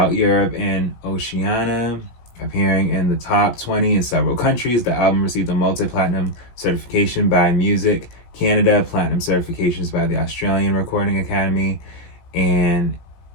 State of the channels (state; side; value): late; right; 17 ms